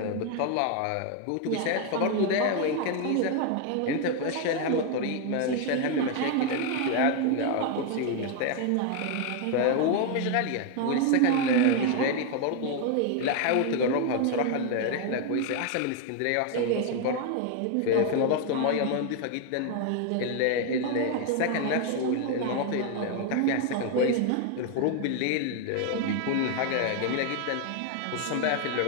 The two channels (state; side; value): different; both; correlation 0.01